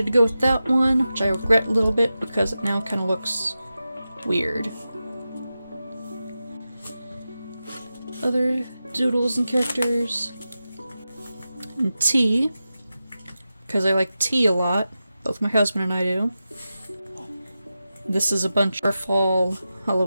to go with that one, which I regret a little bit because it now kind of looks weird. Other doodles and characters. And tea, because I like tea a lot. Both my husband and I do. This is a bunch of fall,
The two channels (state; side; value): inverted; both; correlation -0.92